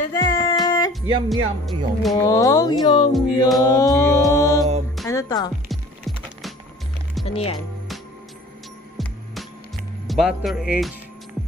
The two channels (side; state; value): both; normal; correlation 0.47